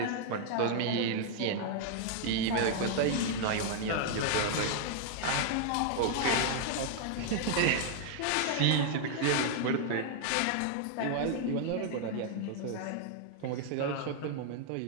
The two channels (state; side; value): different; both; correlation 0.00